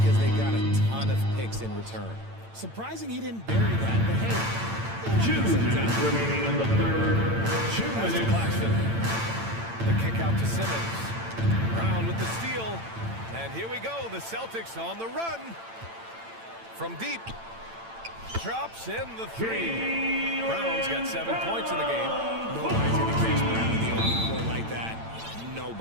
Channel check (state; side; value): late; left; 8.9 ms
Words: they got a ton of picks in return. Surprising he didn't bury that, but hey. 2 minutes remaining in the third. 2 minutes. Claxton. The kick out to Simmons. Brown with the steal. And here we go. The Celtics on the run. From deep. Drops in the three. Brown's got 7 points in the game. Nobody's going to catch Brown in the open court like that.